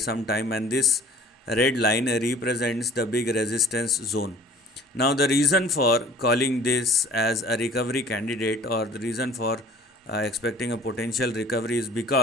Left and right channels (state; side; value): normal; both; correlation 0.49